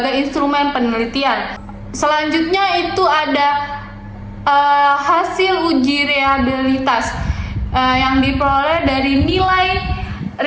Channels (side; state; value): both; identical; correlation 1.00